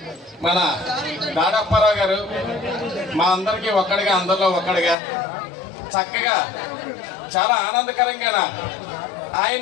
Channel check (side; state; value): right; drops out; at 5.0 s